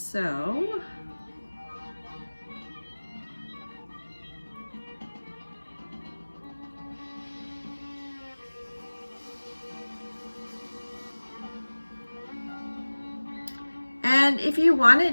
And if you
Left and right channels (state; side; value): inverted; both; correlation -1.00